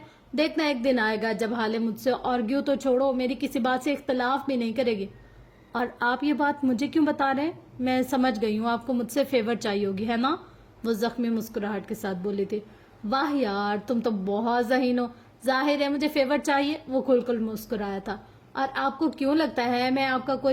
دیکھنا ایک دن آئے گا جب حالے مجھ سے آرگیو تو چھوڑو، میری کسی بات سے اختلاف بھی نہیں کرے گی۔ اور آپ یہ بات مجھے کیوں بتا رہے ہیں؟ میں سمجھ گئی ہوں، آپ کو مجھ سے فیور چاہیے ہوگی، ہے نا؟ وہ زخمی مسکراہٹ کے ساتھ بولی تھی۔ واہ یار، تم تو بہت ذہین ہو، ظاہر ہے مجھے فیور چاہیے۔ وہ کھل کھل مسکرایا تھا۔ اور آپ کو کیوں لگتا ہے میں آپ کا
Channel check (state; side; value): identical; both; correlation 1.00